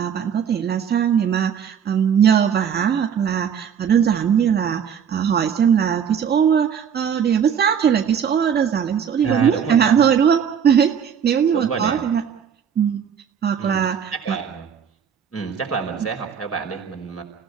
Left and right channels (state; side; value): quieter; left; 7.8 dB